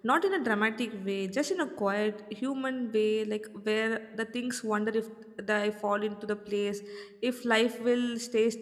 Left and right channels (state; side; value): identical; both; correlation 1.00